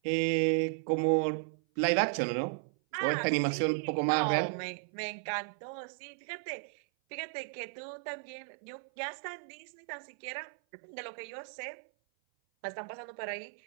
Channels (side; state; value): left; silent; 55 dB below the other